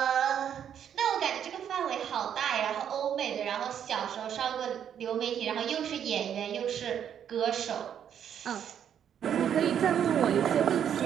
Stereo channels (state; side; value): quieter; left; 9.0 dB